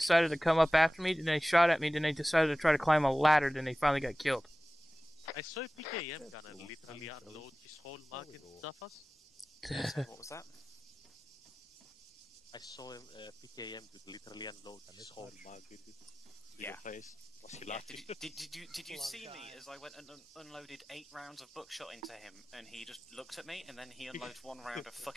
to come up after me, then they shot at me, then they decided to try to climb a ladder, then they finally got killed. I saw a PKM gunner literally unload his whole mag in Zafas. What was that? I saw him, PKM could literally unload his whole mag in your face. Was he laughing? Did you see me as I went and unloaded 8 rounds of buckshot into him, and he just looked at me, and then he unloads 1 round of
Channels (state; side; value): normal; both; correlation 0.97